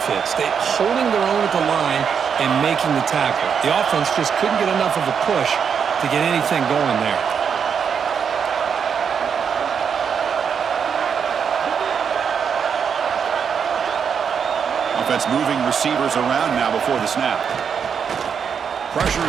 fits. They're holding their own at the line and making the tackle. The offense just couldn't get enough of a push to get anything going there. Offense moving receivers around now before the snap. Pressure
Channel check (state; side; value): quieter; left; 7.0 dB